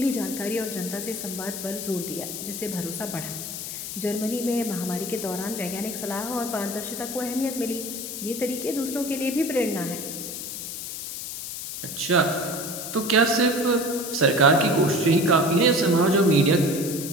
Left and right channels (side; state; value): left; noise; hiss, 7 dB below the sound